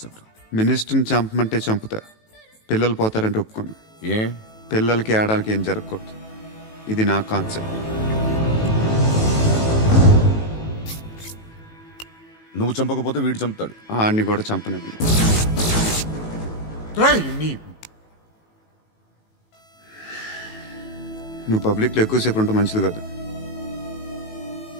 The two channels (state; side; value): late; right; 18 ms